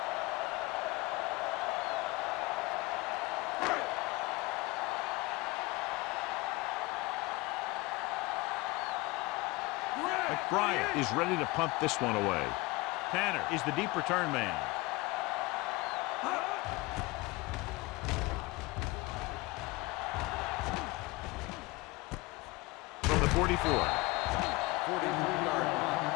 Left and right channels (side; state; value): right; quieter; 22.5 dB